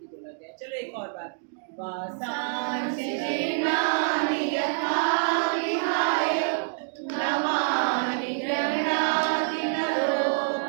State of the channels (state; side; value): silent; left; digital silence